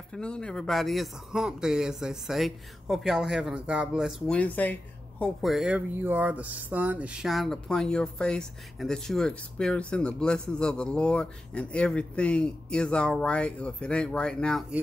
everybody. It's a hump day, as they say. Hope y'all are having a God bless Wednesday. Hope wherever you are, the sun is shining upon your face and that you are experiencing the blessings of the Lord and everything is all right. Or if it ain't right now,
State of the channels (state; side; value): normal; both; correlation 0.92